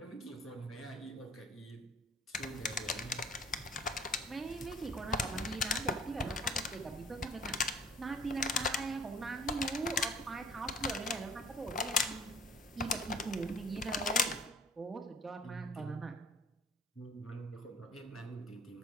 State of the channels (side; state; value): both; normal; correlation 0.53